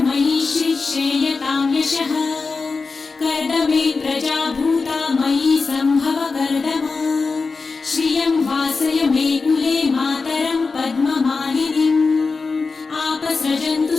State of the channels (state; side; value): quieter; right; 4.3 dB